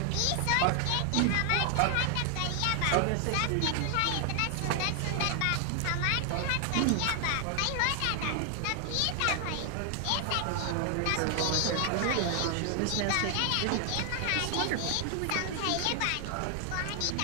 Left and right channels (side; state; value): both; different; correlation 0.00